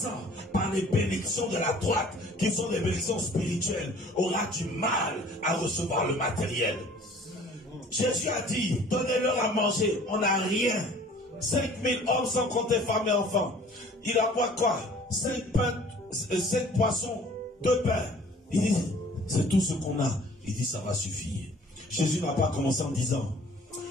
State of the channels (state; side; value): normal; both; correlation 0.51